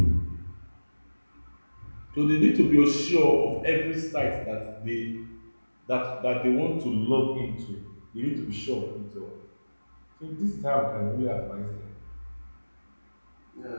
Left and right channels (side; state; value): both; inverted; correlation -1.00